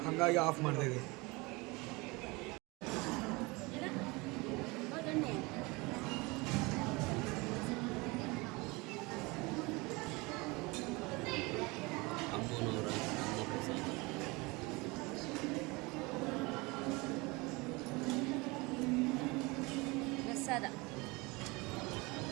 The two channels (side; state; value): left; quieter; 25.1 dB